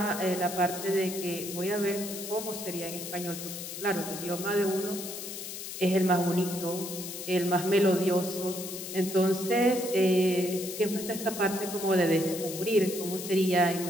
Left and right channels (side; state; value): left; noise; hiss, 8 dB below the sound